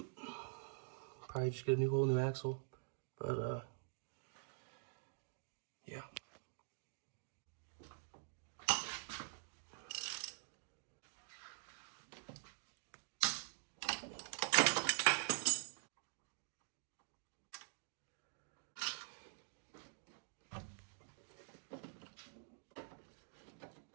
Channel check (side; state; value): left; silent; digital silence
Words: Probably just get a whole new axle, but yeah.